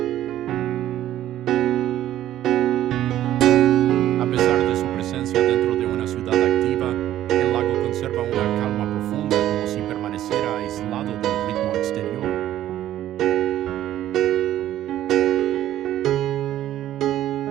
A pesar de su presencia dentro de una ciudad activa, el lago conserva una calma profunda como si permaneciera aislado del ritmo exterior.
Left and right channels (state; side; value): quieter; left; 12.8 dB